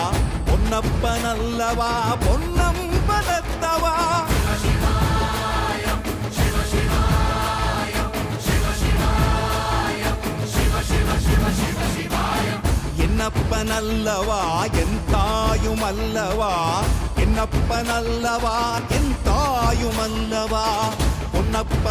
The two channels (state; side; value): identical; both; correlation 1.00